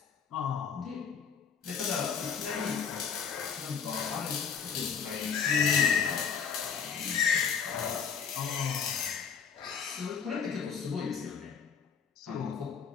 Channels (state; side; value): quieter; right; 6.5 dB